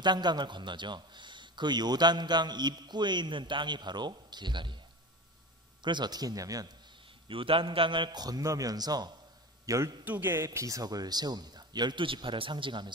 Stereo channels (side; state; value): both; normal; correlation 0.30